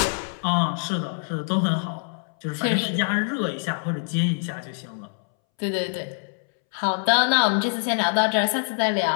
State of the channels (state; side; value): silent; right; 62 dB below the other